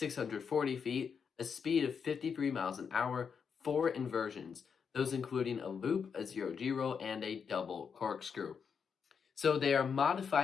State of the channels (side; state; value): right; quieter; 6.4 dB